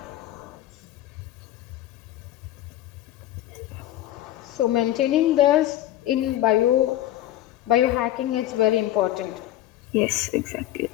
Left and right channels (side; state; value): right; quieter; 13.7 dB